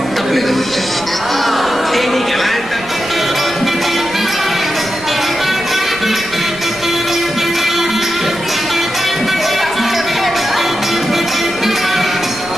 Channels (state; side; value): noise; right; rumble, 19 dB below the sound